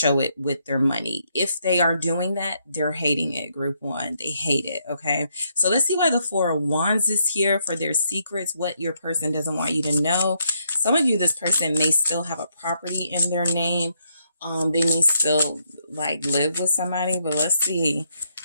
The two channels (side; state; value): both; inverted; correlation -0.75